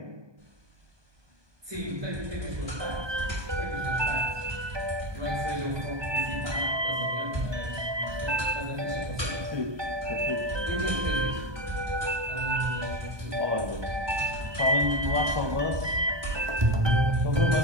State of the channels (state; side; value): late; left; 1.2 ms